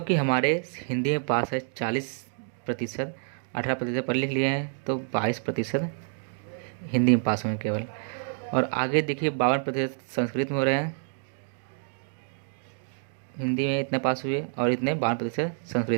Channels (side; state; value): left; silent; 58 dB below the other